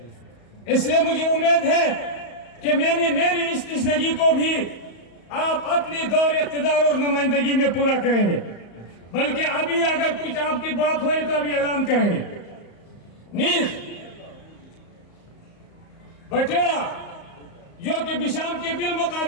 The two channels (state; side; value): late; right; 34 ms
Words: اس لیے مجھے امید ہے کہ میری اس تشنگی کو بھی آپ اپنی دور اقتدار اور نمائندگی میں پورا کریں گے. بلکہ ابھی اگر کچھ آپ کی بات ہوئی تو ابھی اعلان کریں گے. نیز بٹیڑا جو کہ بشام کے